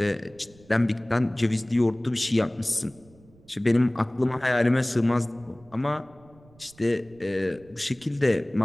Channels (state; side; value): noise; right; rumble, 27 dB below the sound